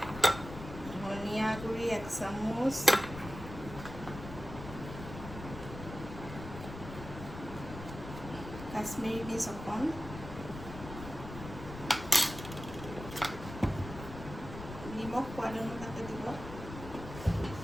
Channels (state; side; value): noise; left; rumble, 11 dB below the sound